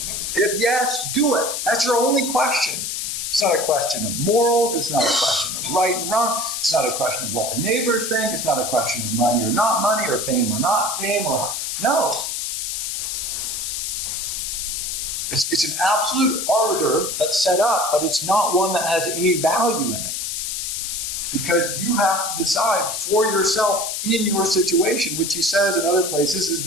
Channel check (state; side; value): noise; left; hiss, 3 dB below the sound